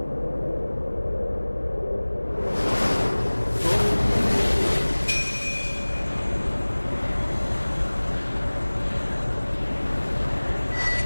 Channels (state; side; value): inverted; both; correlation -1.00